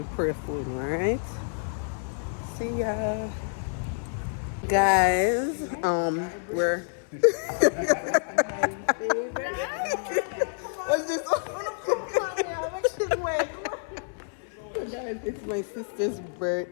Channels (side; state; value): right; silent; 59 dB below the other